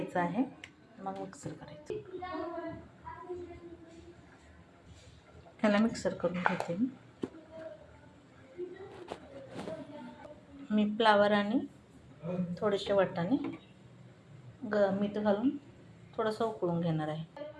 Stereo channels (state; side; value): identical; both; correlation 1.00